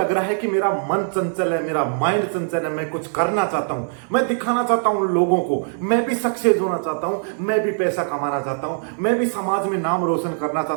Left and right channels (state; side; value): silent; left; digital silence